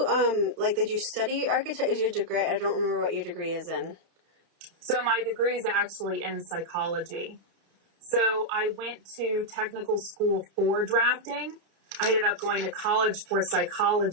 did you study architecture? Is your degree? I don't remember what your degree is in. So my degree is actually in psychology. So I went to technical school for drafting. I ended up going to college for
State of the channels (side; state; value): left; late; 30 ms